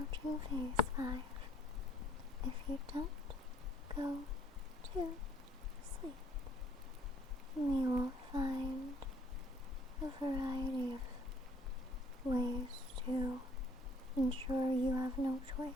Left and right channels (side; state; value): both; normal; correlation 0.61